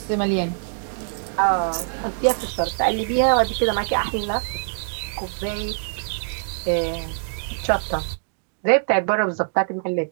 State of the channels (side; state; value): left; silent; digital silence